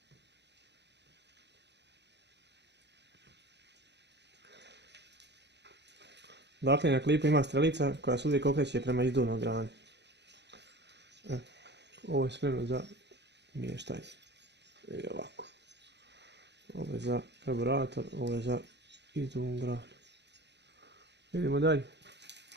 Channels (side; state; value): left; late; 0.50 ms